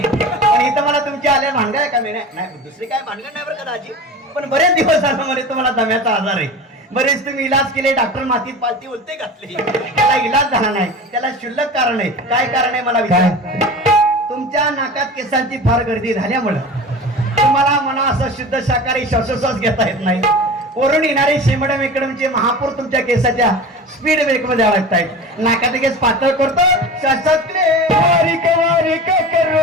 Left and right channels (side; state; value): both; normal; correlation 0.33